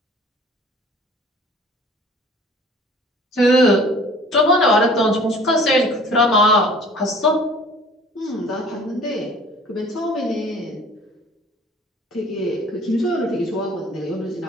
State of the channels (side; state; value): both; normal; correlation 0.49